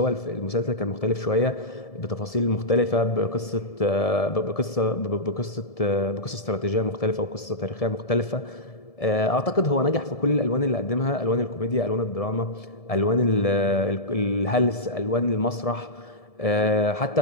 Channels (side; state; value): right; late; 1.7 ms